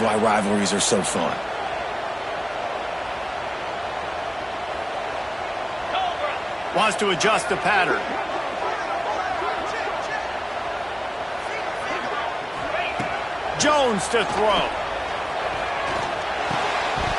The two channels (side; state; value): both; identical; correlation 1.00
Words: rivalries are so fun. Wants to adjust the pattern. Jones to throw.